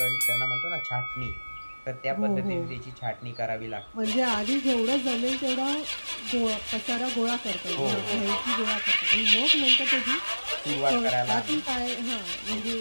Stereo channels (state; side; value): inverted; both; correlation -1.00